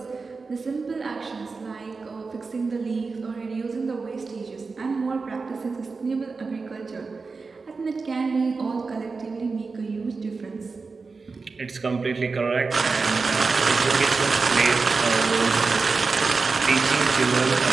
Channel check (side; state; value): left; quieter; 4.4 dB